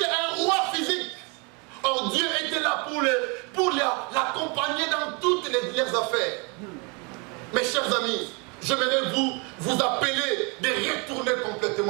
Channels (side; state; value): left; quieter; 31.2 dB